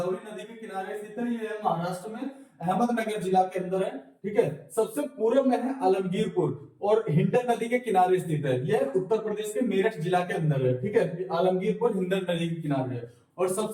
नदी के किनारे स्थित है, ये है महाराष्ट्र में, अहमदनगर जिला के अंदर है। ठीक है, सबसे पूर्व में है आलमगीरपुर और हिंडन नदी के किनारे स्थित है, यह उत्तर प्रदेश के मेरठ जिला के अंदर है। ठीक है, आलमगीरपुर हिंडन नदी के किनारे है। और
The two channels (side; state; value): both; identical; correlation 1.00